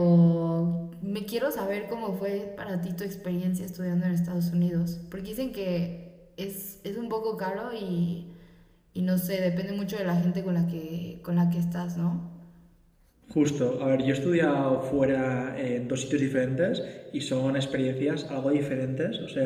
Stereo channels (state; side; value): identical; both; correlation 1.00